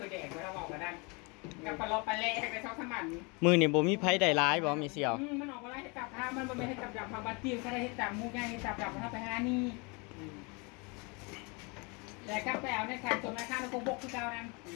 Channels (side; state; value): right; quieter; 30.0 dB